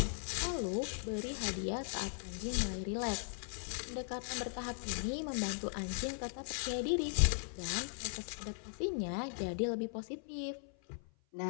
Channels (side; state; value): right; silent; 52 dB below the other